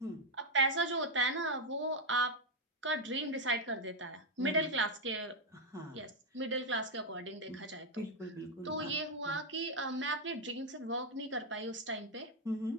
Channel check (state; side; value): normal; both; correlation 0.01